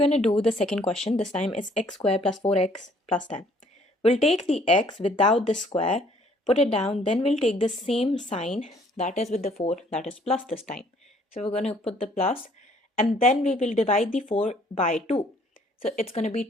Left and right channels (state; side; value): normal; both; correlation 0.61